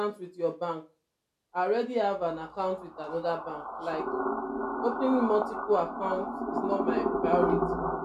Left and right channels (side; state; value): both; identical; correlation 1.00